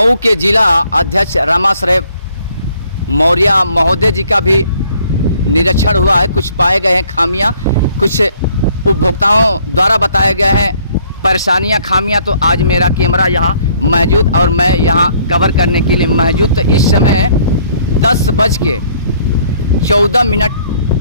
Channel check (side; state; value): both; inverted; correlation -0.63